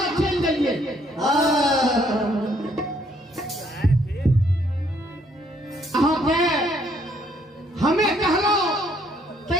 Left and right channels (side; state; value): both; normal; correlation 0.67